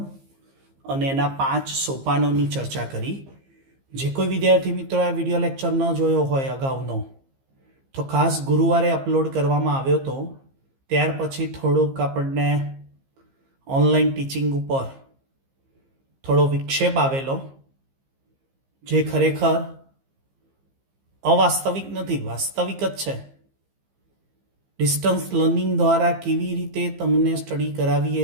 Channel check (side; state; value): left; late; 15 ms